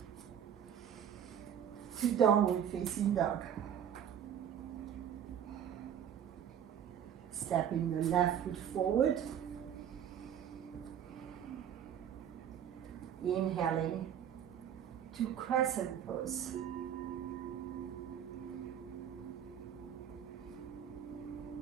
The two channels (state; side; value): quieter; left; 9.2 dB